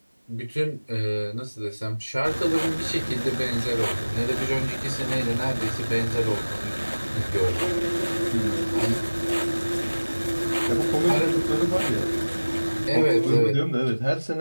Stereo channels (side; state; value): both; inverted; correlation -1.00